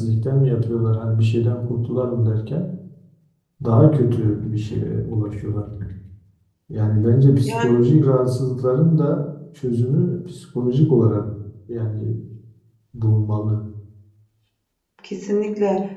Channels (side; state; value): both; identical; correlation 1.00